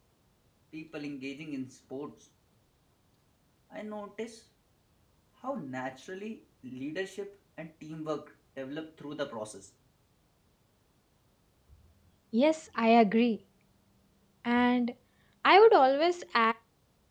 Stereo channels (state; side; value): identical; both; correlation 1.00